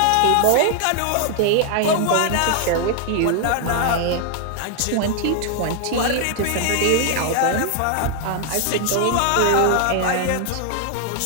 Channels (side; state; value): both; different; correlation 0.00